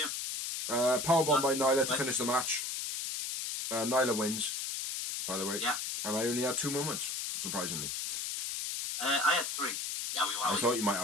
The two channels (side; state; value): left; noise; hiss, 2 dB below the sound